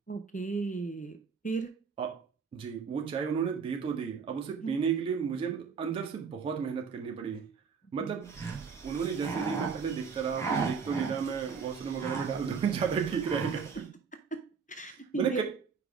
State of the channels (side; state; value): left; quieter; 5.9 dB